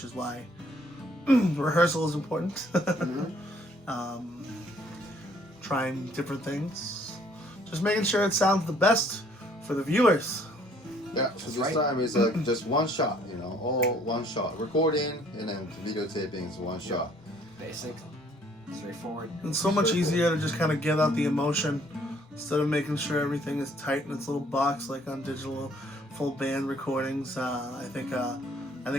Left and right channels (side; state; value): both; normal; correlation 0.61